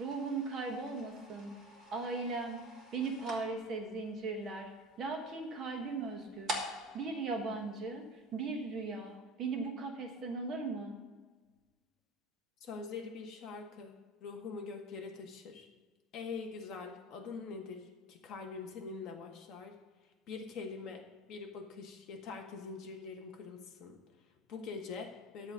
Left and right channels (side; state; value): both; normal; correlation 0.33